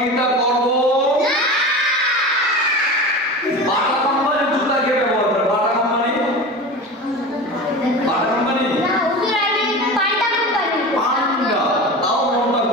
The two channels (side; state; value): both; normal; correlation 0.30